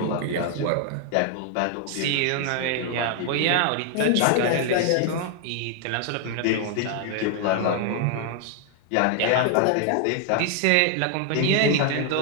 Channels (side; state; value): both; different; correlation 0.00